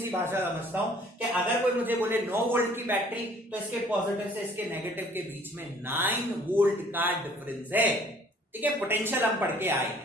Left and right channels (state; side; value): normal; both; correlation 0.56